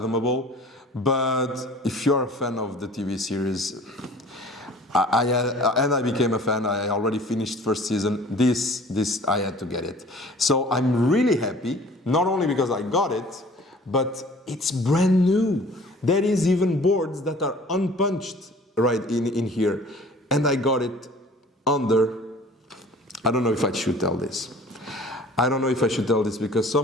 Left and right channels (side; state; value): both; normal; correlation 0.48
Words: But if you're a fan of the TV series, I became a fan. I already finished first season. This I had to get it. So I'm really happy, not only because I got it, but it's brand new. There is even boards that are unpunched right in here. And I got it under, I don't know if I should tell this. I don't know if I should tell this because